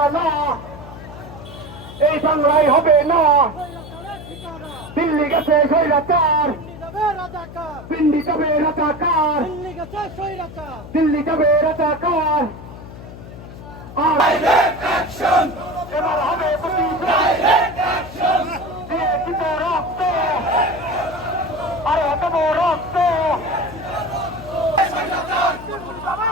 এই বাংলায় হবে না। দিল্লি গেছে স্বৈরাচার, পিন্ডি যাবে রাজাকার, দিল্লি যাবে রাজাকার। এবার হবে দিয়ে দিব রক্ত, আরে দেব রক্ত।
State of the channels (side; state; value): left; noise; hum, 14 dB below the sound